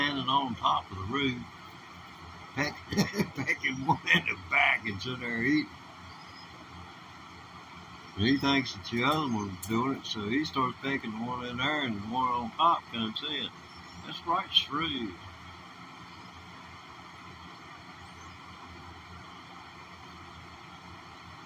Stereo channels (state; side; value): identical; both; correlation 1.00